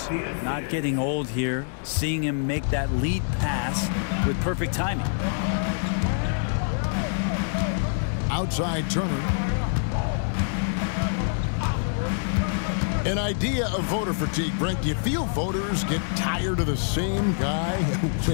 Not getting old here. Seeing him make that lead pass with perfect timing. Outside Turner. An idea of voter fatigue, Brent. Do you feel voters get tired of the same guy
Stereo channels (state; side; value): silent; right; digital silence